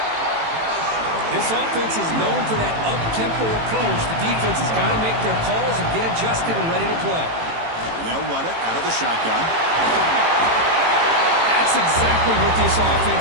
This offense is known for that up-tempo approach. The defense has got to make their calls and get adjusted and ready to play. And they'll run it out of the shotgun. That's exactly what this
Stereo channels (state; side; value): late; left; 18 ms